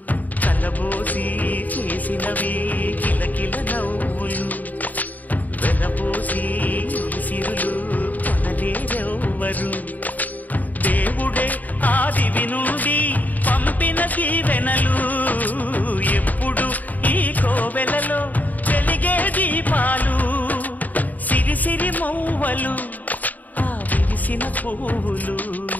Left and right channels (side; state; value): right; late; 0.080 ms